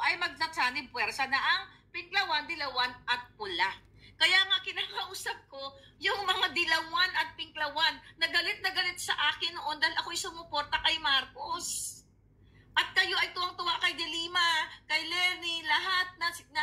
magsasanib puwersa na ang Pinklawan, Dilawan at Pula. Kaya nga kinakausap ko yung mga Dilawan at Pinklawan na galit sa akin noon dahil ako'y sumuporta kay Marcos. At kayo ay tuwang-tuwa kay De Lima, kay Lenny, lahat na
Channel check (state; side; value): identical; both; correlation 1.00